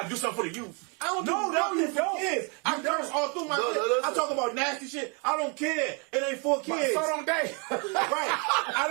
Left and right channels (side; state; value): left; quieter; 34.5 dB